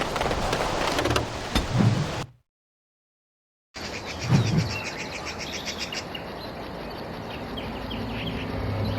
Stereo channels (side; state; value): both; identical; correlation 1.00